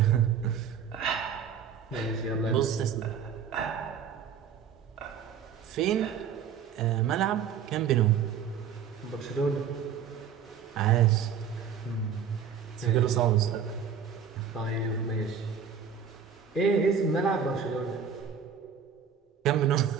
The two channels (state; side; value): quieter; left; 7.3 dB